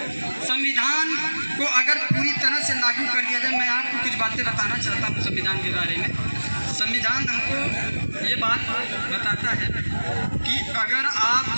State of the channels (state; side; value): inverted; both; correlation -1.00